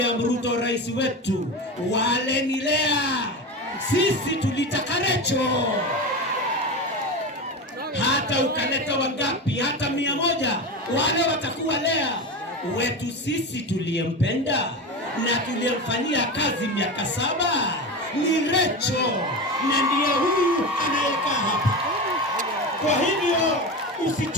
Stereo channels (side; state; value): both; normal; correlation 0.24